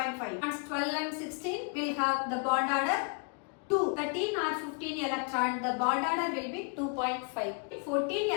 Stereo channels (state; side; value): quieter; right; 37.7 dB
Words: And 12 and 16 will have the bond order 2. 13 or 15 electron the bond order will be 2.5. 14